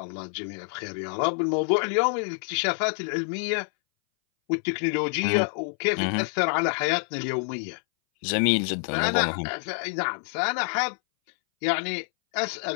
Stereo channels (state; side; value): silent; right; 60 dB below the other